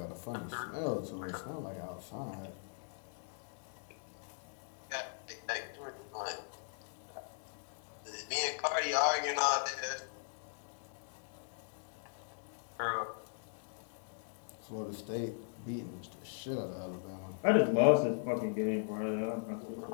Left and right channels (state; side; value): silent; right; digital silence